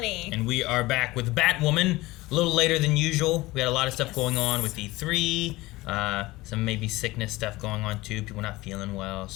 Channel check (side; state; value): right; quieter; 19.8 dB